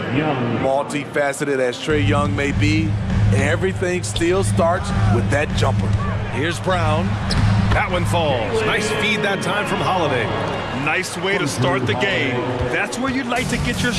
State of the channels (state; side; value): identical; both; correlation 1.00